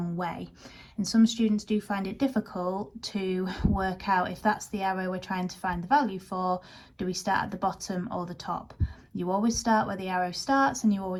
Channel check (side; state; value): both; identical; correlation 1.00